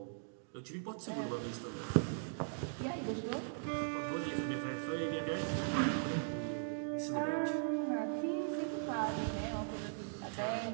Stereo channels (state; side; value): silent; left; digital silence